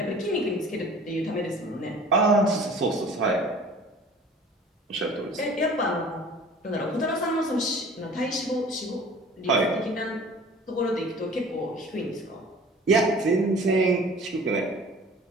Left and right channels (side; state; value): both; normal; correlation 0.46